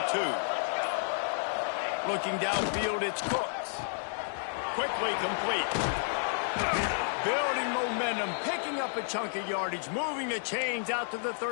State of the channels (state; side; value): silent; right; digital silence